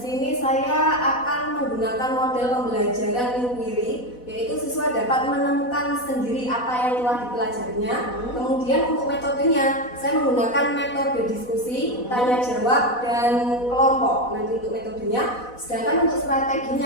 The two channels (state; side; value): late; right; 4.1 ms